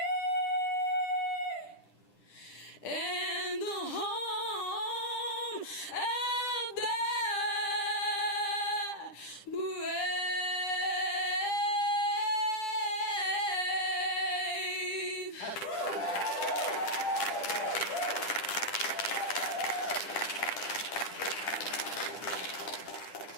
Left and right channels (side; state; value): right; late; 10 ms